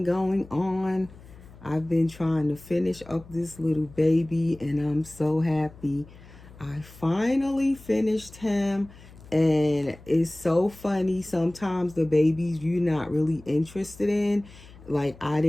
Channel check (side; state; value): left; noise; hum, 21 dB below the sound